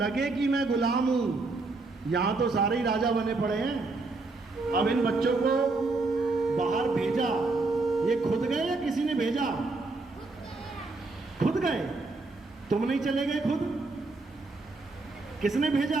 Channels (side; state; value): left; quieter; 3.5 dB